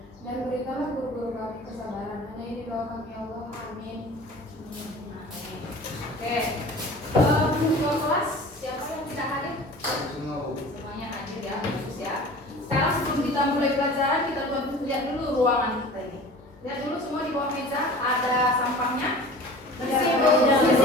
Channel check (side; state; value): both; normal; correlation 0.41